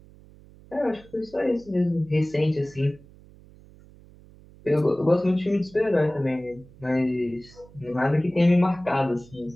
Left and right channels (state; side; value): noise; right; hum, 24 dB below the sound